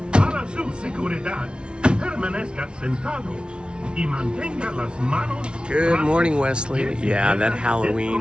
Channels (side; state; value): left; late; 0.057 ms